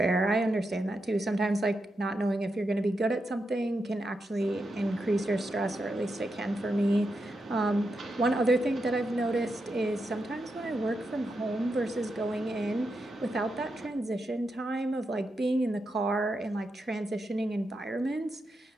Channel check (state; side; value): normal; both; correlation 0.86